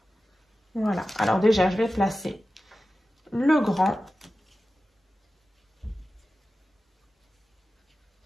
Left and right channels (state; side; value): normal; both; correlation 0.94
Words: Voilà. Alors déjà, je vais placer le grand.